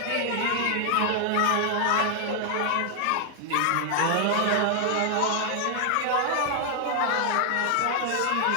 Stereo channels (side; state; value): both; different; correlation 0.00